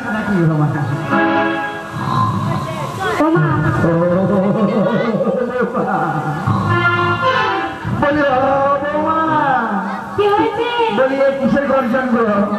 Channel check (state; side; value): identical; both; correlation 1.00